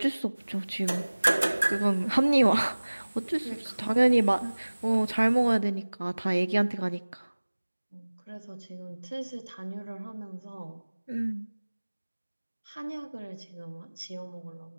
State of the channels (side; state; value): both; inverted; correlation -1.00